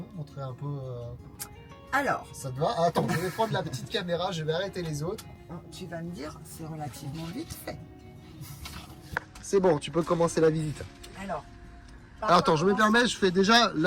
montrer un peu. Alors. Ça te va? Ah, attends, je vais prendre la petite caméra, je vais arrêter les autres. Tu vas me dire, c'est relativement vite fait. C'est bon, tu peux commencer la visite. Alors. Attends, je me permets, je fais déjà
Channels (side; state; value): both; identical; correlation 1.00